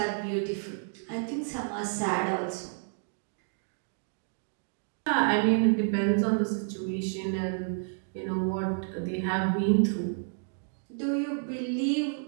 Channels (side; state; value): left; silent; digital silence